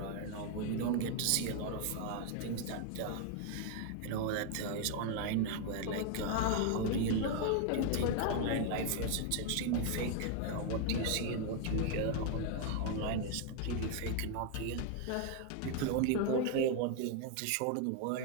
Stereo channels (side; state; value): both; different; correlation 0.00